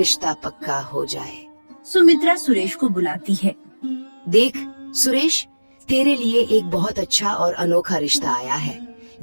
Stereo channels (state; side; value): inverted; both; correlation -1.00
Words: पक्का हो जाए। सुमित्रा सुरेश को बुलाती है। देख सुरेश, तेरे लिए एक बहुत अच्छा और अनोखा रिश्ता आया है,